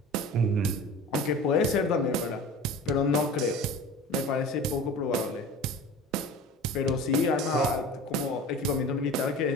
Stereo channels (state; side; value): normal; both; correlation 0.37